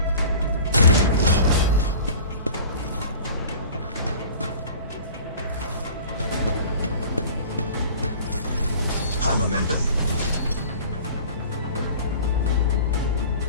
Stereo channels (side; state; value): both; inverted; correlation -0.42